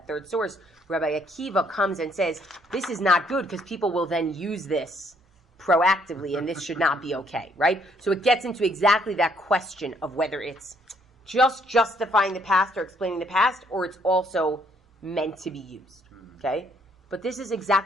third source, Rabbi Akiva comes and says, this is not good because people will then use this proactively and this should not be okay, right? So it gets into exactly that question of whether it's just justifying the past or explaining the past, or it's also meant to be used, okay? But this is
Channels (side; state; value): both; normal; correlation 0.67